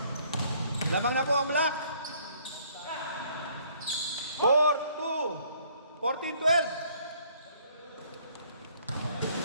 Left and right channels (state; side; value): inverted; both; correlation -0.62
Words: Lamang na po ang black. 4-2. 14-12.